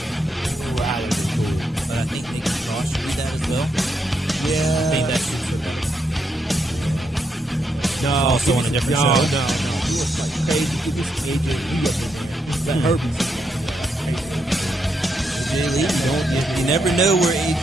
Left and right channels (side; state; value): both; normal; correlation 0.80